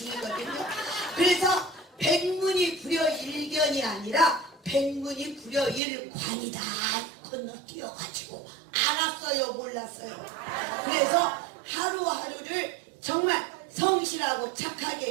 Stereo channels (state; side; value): drops out; left; at 5.8 s